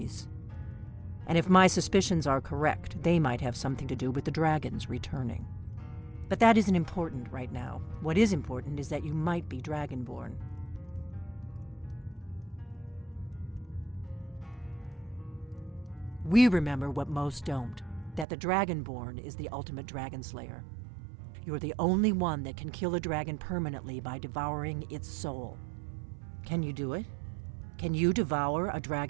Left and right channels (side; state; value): left; drops out; at 18.2 s